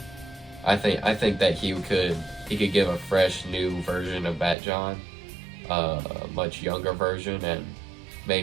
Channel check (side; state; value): left; drops out; at 4.5 s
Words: I think that he could give a fresh new version of Batjon, a much younger version, and